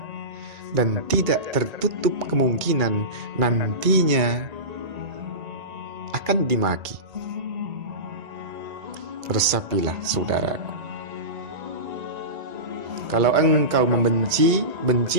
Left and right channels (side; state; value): left; late; 2.2 ms